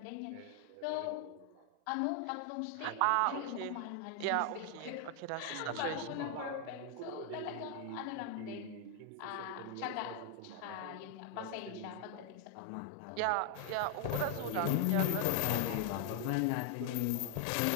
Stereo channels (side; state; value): both; different; correlation 0.00